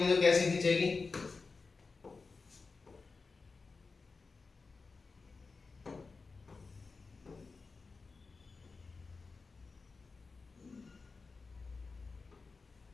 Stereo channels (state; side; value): quieter; right; 4.3 dB